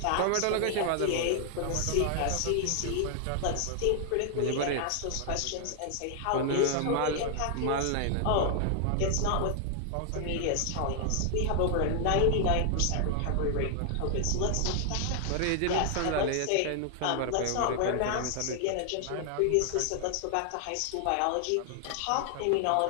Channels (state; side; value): different; both; correlation 0.00